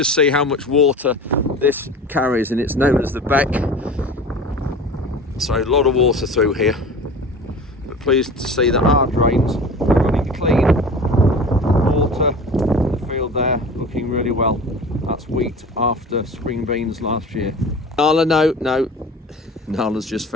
see how much water this carries, and it's known as the beck. So a lot of water through here, but pleased to see that our drains are running clean. Water in the field there looking really well. That's wheat after spring beans last year. Nala, no. Nala's just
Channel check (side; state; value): both; normal; correlation 0.37